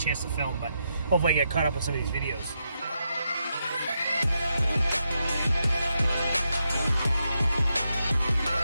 to film, but hopefully I get caught up on some of these videos.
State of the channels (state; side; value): inverted; both; correlation -0.83